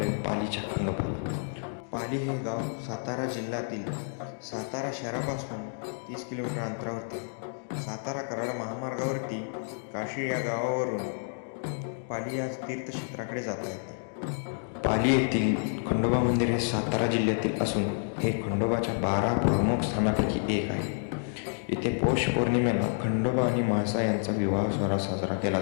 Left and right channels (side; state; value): right; silent; digital silence